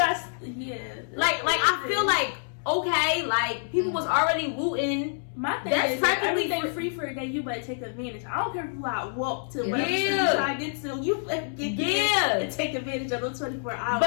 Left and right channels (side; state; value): right; silent; 60 dB below the other